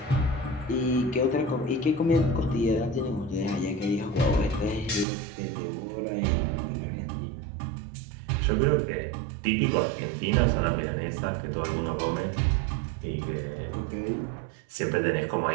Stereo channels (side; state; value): left; drops out; at 5.1 s